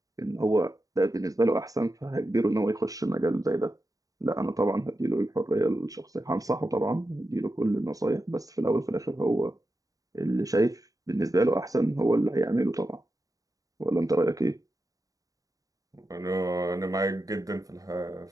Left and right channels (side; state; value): left; late; 0.17 ms